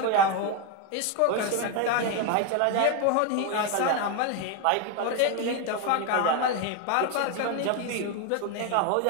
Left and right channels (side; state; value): both; different; correlation 0.02